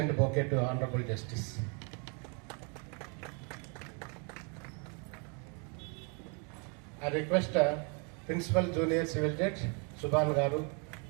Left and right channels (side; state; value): left; quieter; 36.4 dB